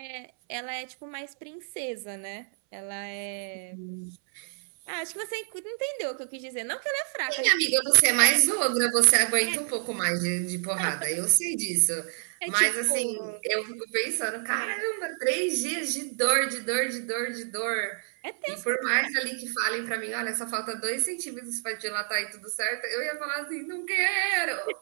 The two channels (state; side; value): silent; left; 59 dB below the other